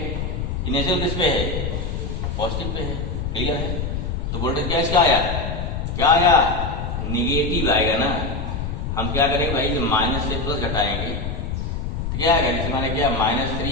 इनिशियल किस पे है, पॉजिटिव पे है, क्लियर है। तो वोल्टेज क्या इसका आया, क्या आया, निगेटिव आएगा ना। हम क्या करेंगे भाई, माइनस से प्लस घटाएंगे तो क्या आएगा, जैसे मैंने क्या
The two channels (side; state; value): left; noise; rumble, 3 dB below the sound